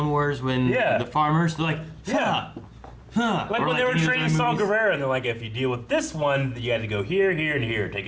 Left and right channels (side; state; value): both; identical; correlation 1.00